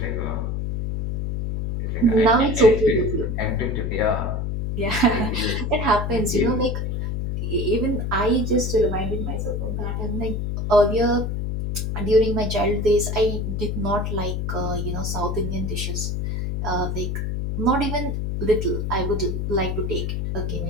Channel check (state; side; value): noise; left; hum, 1 dB below the sound